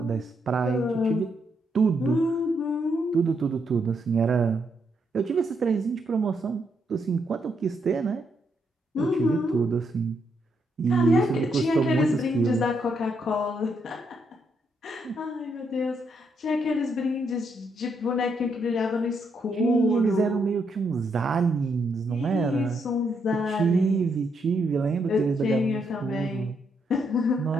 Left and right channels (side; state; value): both; normal; correlation 0.77